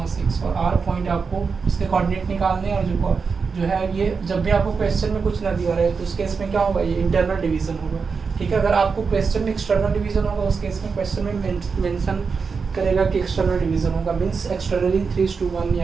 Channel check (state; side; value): quieter; left; 5.2 dB